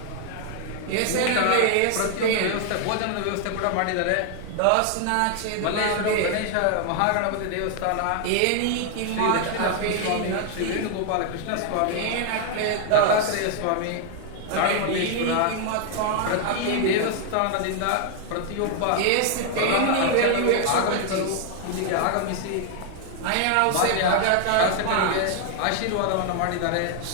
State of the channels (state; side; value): different; both; correlation 0.00